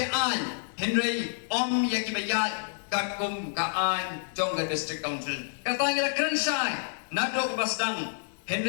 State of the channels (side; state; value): right; silent; 56 dB below the other